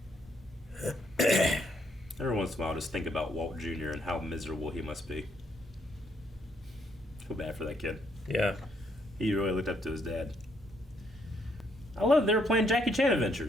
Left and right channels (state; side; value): normal; both; correlation 0.72